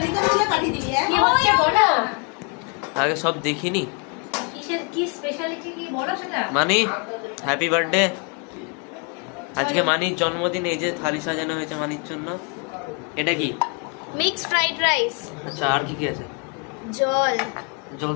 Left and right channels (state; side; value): quieter; right; 34.9 dB